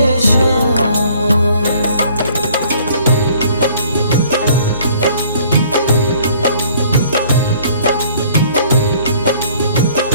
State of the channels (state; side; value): inverted; both; correlation -0.57